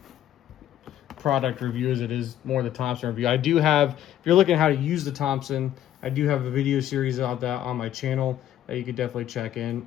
product review as it is more the Thompson review. I do have, if you're looking at how to use the Thompson, I do have a video series about that on my channel that you could definitely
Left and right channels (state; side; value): quieter; right; 11.6 dB